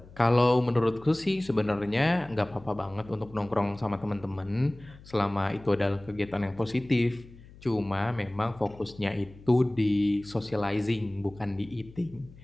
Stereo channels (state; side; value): noise; left; hum, 21 dB below the sound